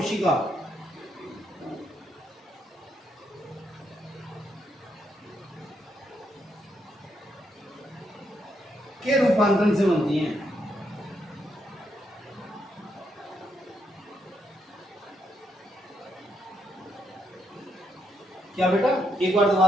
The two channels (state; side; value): normal; both; correlation 0.78